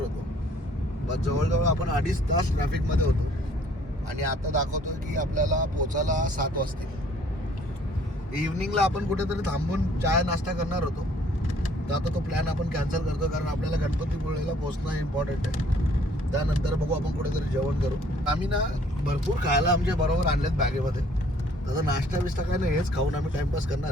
होतो. बस जवळजवळ आपण 2.5 तास ट्रॅफिकमध्ये होतो आणि आता दाखवतोय की आपल्याला पोचायला 7 वाजतील. इव्हनिंगला आपण कुठेतरी थांबून चाय नाश्ता करणार होतो, तर आता तो प्लॅन आपण कॅन्सल करतो, कारण आपल्याला गणपतीपुळेला पोहोचणं इम्पॉर्टंट आहे. त्यानंतर बघू आपण कुठेतरी जेवण करू. आम्ही ना भरपूर खायला आमच्या बरोबर आणलेत बॅगेमध्ये. तसं नाश्ता बिस्टा काय नाही, हेच खाऊन आम्ही टाइमपास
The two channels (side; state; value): both; normal; correlation 0.60